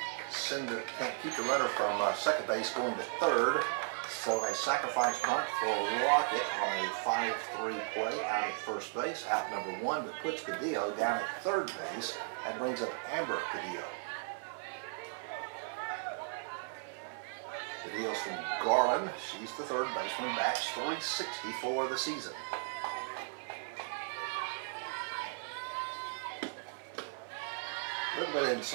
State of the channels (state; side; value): silent; left; 54 dB below the other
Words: keep the runner from second base going to third. So a sacrifice bunt for Lockett on a 5-3 play out at first base. Out number 1, but puts Cadillo down at third base. That brings up Amber Cadillo. Cadillo's from Garland. She's the third baseman. Bats .360 for the season. A little bit